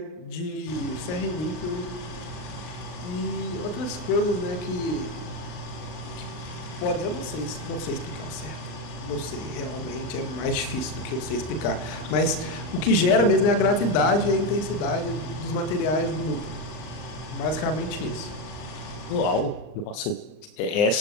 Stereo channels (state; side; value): late; right; 39 ms